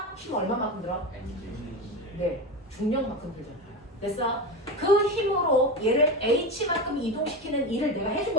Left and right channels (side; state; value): both; normal; correlation 0.20